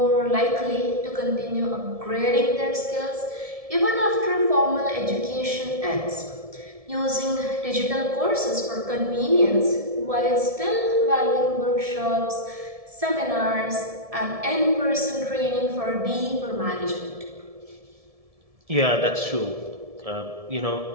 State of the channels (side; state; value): left; late; 1.7 ms